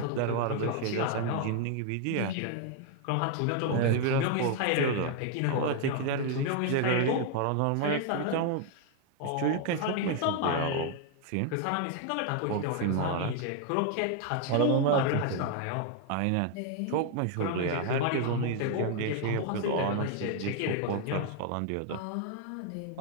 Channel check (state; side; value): different; both; correlation 0.00